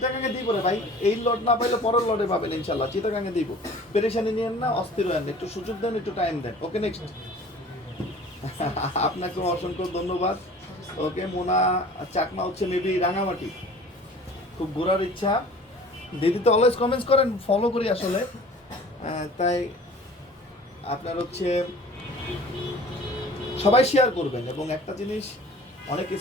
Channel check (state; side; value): normal; both; correlation 0.46